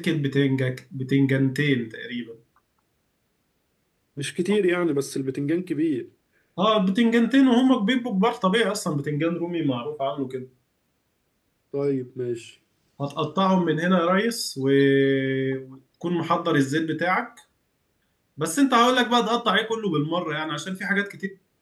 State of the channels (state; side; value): identical; both; correlation 1.00